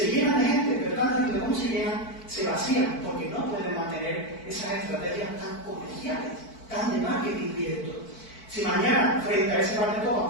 llenan de gente, pero tan rápido como se llenan, se vacían, porque no pueden mantener esas estrategias tan comerciales, tan de marketing directo. Si mañana, frente a ese bar de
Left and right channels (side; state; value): right; late; 4.5 ms